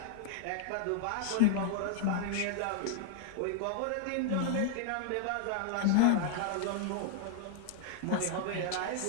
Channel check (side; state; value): both; different; correlation 0.00